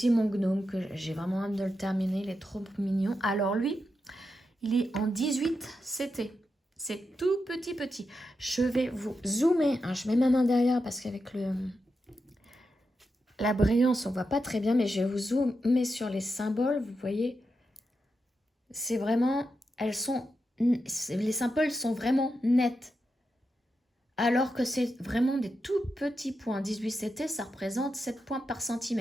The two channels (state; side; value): normal; both; correlation 0.87